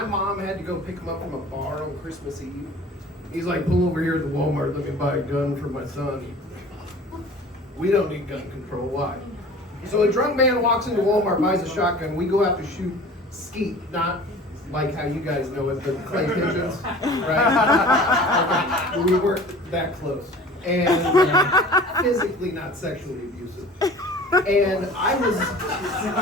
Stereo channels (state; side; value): normal; both; correlation 0.43